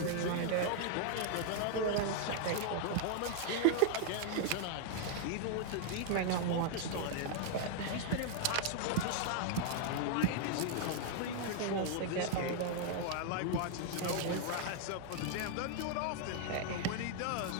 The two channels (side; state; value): both; different; correlation 0.00